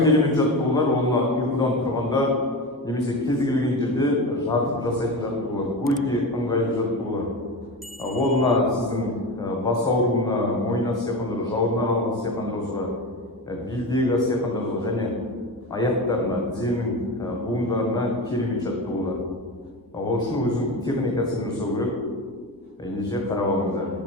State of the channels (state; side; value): normal; both; correlation 0.24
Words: жаттығулар олар ұйқыдан тұрғанда немесе кез келген жерде жатып жасайтын жаттығулар. Өте ыңғайлы жаттығулар. Ол мына сіздің бас ауруына, мойын астиқандыру, жауырын аралық астиқандыруға, белдегі астиқандыруға және аяқтарына, тізенің буындарына керемет жаттығулар. Ол үшін өзінің техникасын жасау керек. Ендеше қарап алыңыздар.